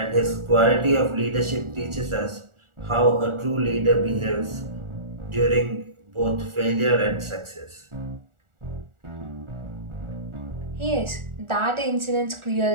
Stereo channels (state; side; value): late; left; 1.4 ms